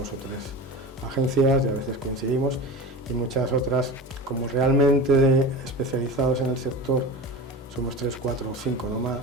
o 3 agencias y a veces coincidimos, y muchas otras, como realmente especializados en el sector, somos 3, 4 o 5 no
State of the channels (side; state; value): both; normal; correlation 0.31